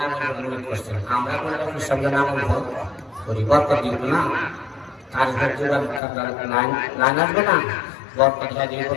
মনে করছেন আমরা কোনো পিসার নাম করি বরকত দিব না কাজ লাইন আসবে না বরকত দিয়ে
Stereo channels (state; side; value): drops out; right; at 6.0 s